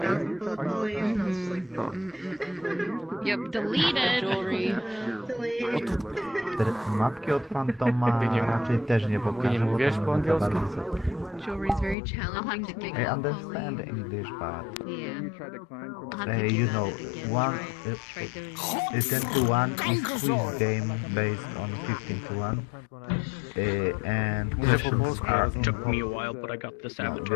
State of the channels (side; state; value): right; drops out; at 12.0 s